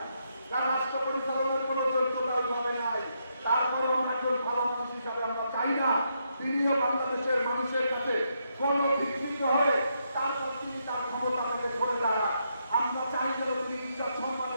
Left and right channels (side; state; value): both; inverted; correlation -0.79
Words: তার রাষ্ট্র পরিচালনার কোনো যোগ্যতা ওইভাবে নাই। তারপরেও আমরা একজন ভালো মানুষ হিসাবে আমরা চাই না তিনিও বাংলাদেশের মানুষের কাছে কোনো ভিত্তিত হয়ে তারপর তিনি তার ক্ষমতা থেকে সরে দাঁড়ান। আমরা চাই যেন তিনি ইজ্জত